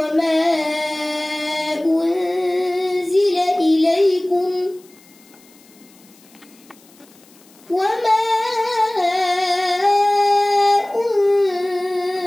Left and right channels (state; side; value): noise; left; hiss, 28 dB below the sound